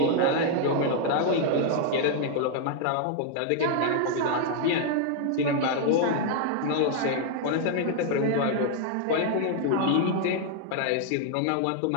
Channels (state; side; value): different; both; correlation 0.00